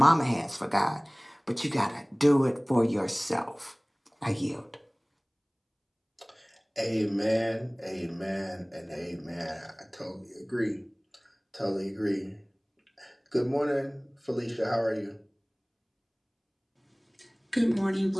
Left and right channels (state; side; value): identical; both; correlation 1.00